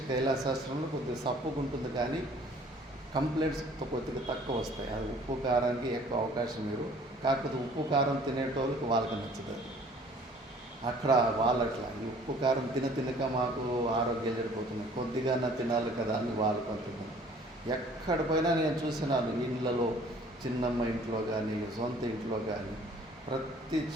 కైలాసాశ్రమంలో కొద్దిగా సప్పుకుంటుంది, కానీ కంప్లైంట్స్ కొద్దిగా తక్కువ వస్తాయి. అది ఉప్పు కారానికి ఎక్కువ అవకాశం మీరు. కాకపోతే ఉప్పు కారం తినేటోళ్ళకి వాళ్ళకి నచ్చదు. అక్కడ వాళ్ళట్లా ఈ ఉప్పు కారం తినక మాకు ఆరోగ్యాలు చెడిపోతున్నాయి, కొద్దిగా తినాలి కదా అని వాళ్ళు కొంటున్నారు. ఎక్కడ పోయినా నేను చూసినాను, ఇళ్ళలో చిన్నమ్మ ఇంట్లో కానీ సొంత ఇంట్లో కానీ ప్రతి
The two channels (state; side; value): normal; both; correlation 0.53